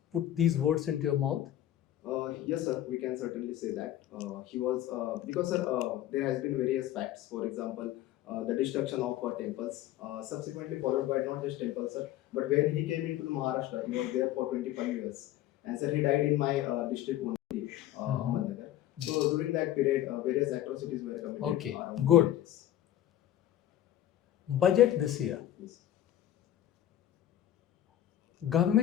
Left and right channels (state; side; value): quieter; right; 12.7 dB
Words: put these words into your mouth. Yes, sir, we can certainly say that. He was, because sir, there has been various facts. For example, the destruction of temples, subsequently followed by not just temples, sir, but when he came into Maharashtra, he was there for 25 years. And sir, he died in my district only, Ahmednagar. So during that period, various atrocities were committed. Okay, good. Villages. Budget this year. Yes.